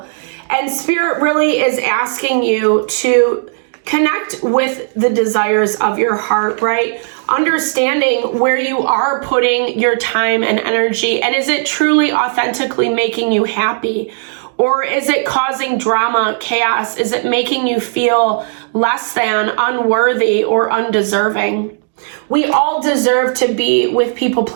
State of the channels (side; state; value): left; silent; 63 dB below the other